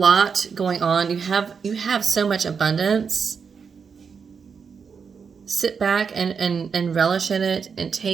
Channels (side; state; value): left; quieter; 6.0 dB